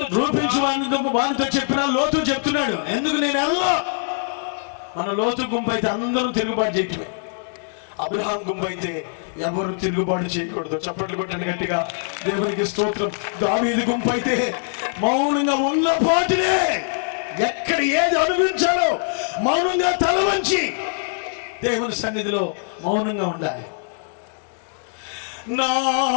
చెప్పినా లోతు చెప్తున్నాడు. ఎందుకు నేను వెళ్ళా? మన లోతు గుంపు అయితే అందరూ తిరుగుబాటు చేయటమే. అబ్రహాం గుంపు అయితే ఎవరు తిరుగుబాటు చేయకూడదు. చప్పట్లు కొట్టండి గట్టిగా, దేవునికి స్తోత్రం. దావీదు గుంపు అయితే మౌనంగా ఉన్న పాటినే ఎక్కడ ఏది అనుభవించాలో మౌనంగా తల వంచి దేవుని సన్నిధిలో మౌనంగా ఉండాలి.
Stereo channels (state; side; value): silent; right; digital silence